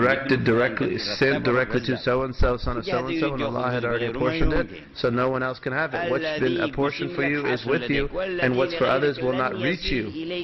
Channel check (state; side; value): identical; both; correlation 1.00